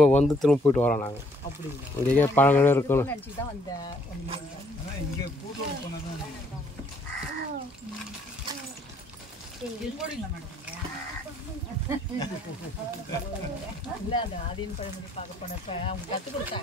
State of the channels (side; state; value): both; normal; correlation 0.65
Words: வந்து திரும்ப போயிட்டு வரோம் நாங்கள் இங்கே பழங்களே இருக்கணும் ஆதீன் பழமொழி பார்க்க போனப்ப அவங்க கற்றுக்